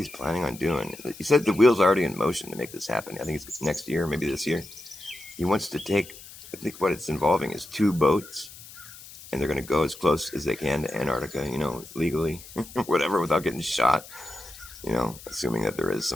planning on doing, he said the wheel's already in motion to make this happen. I think it's next year, maybe this year. He wants to take, I think what it's involving is 2 boats, and they're going to go as close as they can to Antarctica, legally, whatever, without getting shot, assuming that there is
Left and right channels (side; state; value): left; noise; hiss, 17 dB below the sound